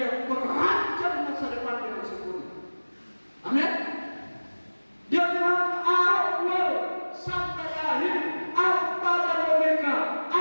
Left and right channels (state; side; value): inverted; both; correlation -1.00